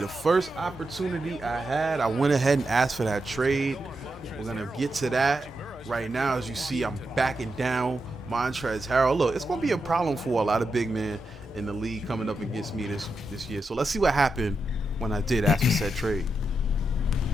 the first opportunity I had, I went ahead and asked for that trade. We're going to get to that. Right now, as you see, I'm backing down Montrezl Harrell. Look, it's going to be a problem for a lot of big men in the league coming up against me this year. So let's see what happened when I did ask for said trade.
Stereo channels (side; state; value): both; normal; correlation 0.86